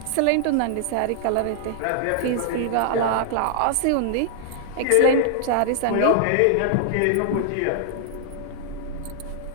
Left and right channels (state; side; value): different; both; correlation -0.01